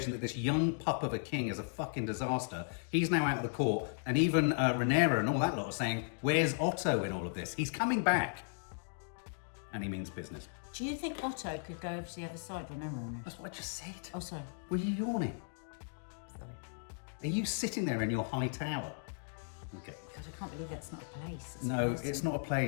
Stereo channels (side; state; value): right; silent; digital silence